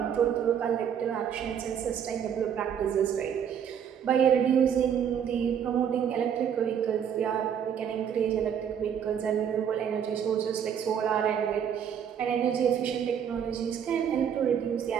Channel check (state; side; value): quieter; left; 8.3 dB